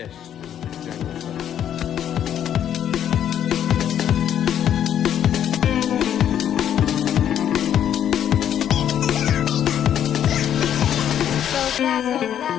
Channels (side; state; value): right; quieter; 9.9 dB